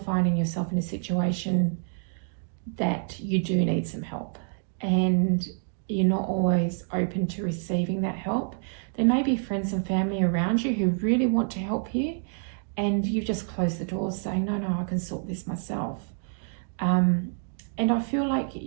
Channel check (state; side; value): silent; left; 60 dB below the other